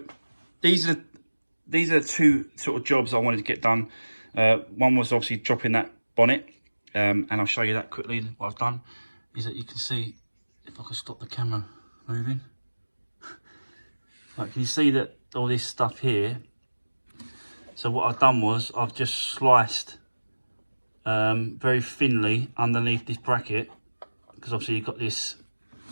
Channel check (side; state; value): both; inverted; correlation -1.00